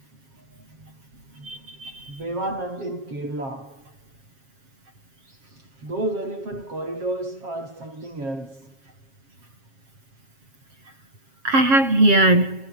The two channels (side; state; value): left; late; 7.4 ms